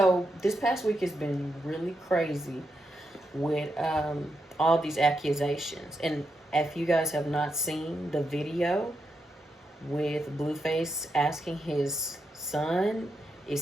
this past week has been really crazy with all these accusations. And if you guys have not seen the video with Blueface asking his son,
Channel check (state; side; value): normal; both; correlation 0.84